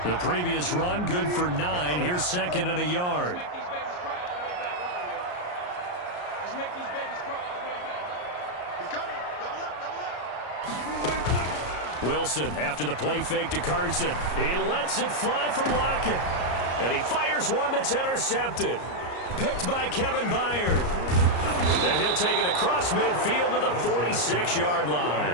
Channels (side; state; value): right; late; 34 ms